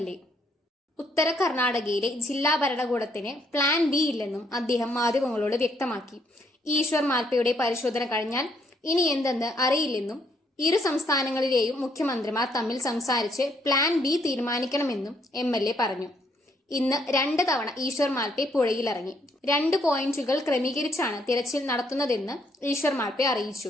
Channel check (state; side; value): normal; both; correlation 0.70